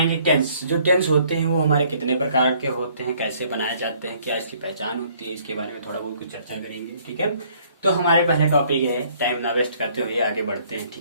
टेंस। जो टेंस होते हैं वो हमारे कितने प्रकार के होते हैं, कैसे बनाए जाते हैं, क्या इसकी पहचान होती है, इसके बारे में थोड़ा बहुत कुछ चर्चा करेंगे। ठीक है, तो हमारे पहले टॉपिक है, टाइम ना वेस्ट करते हुए आगे बढ़ते हैं।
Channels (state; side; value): inverted; both; correlation -0.62